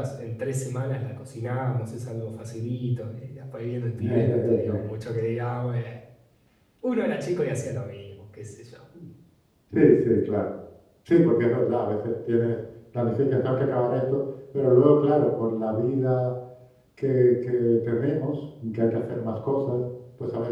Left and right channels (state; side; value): identical; both; correlation 1.00